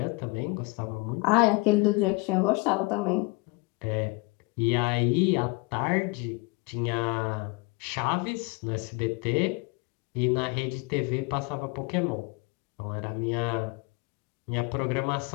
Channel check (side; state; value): right; quieter; 27.1 dB